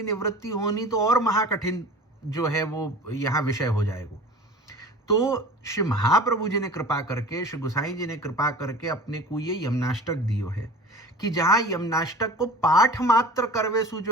निवृत्ति होनी तो और महाकठिन जो है वो यहाँ विषय हो जाएगा। तो श्री महाप्रभु जी ने कृपा करके, श्री गोसाई जी ने कृपा करके अपने को ये यमनाष्टक दियो है कि जहाँ यमनाष्टक को पाठ मात्र करवे सु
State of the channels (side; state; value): both; normal; correlation 0.40